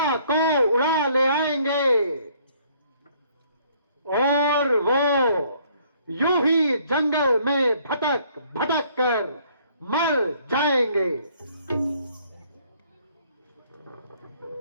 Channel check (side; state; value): both; inverted; correlation -0.63